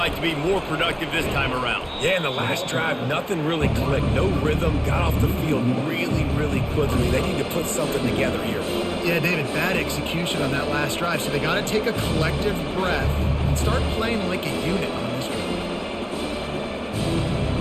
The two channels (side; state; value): both; identical; correlation 1.00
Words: to be more productive this time around. Yeah, in the last drive, nothing really clicked. No rhythm, got off the field really quickly. They need to put something together here. Yeah, David, bad execution on that last drive, so they got to take a collective breath and start playing like a unit on this one.